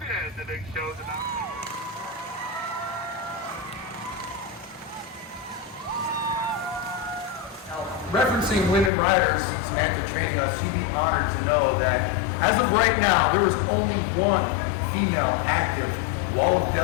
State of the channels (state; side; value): drops out; right; at 8.9 s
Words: in. The big show's about to Now, referencing women riders, Samantha trained us, you'd be honored to know that as of right now, there is only one female active Wall of